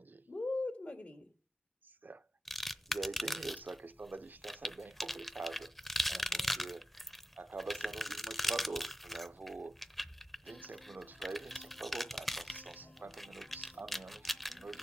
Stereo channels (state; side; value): normal; both; correlation 0.92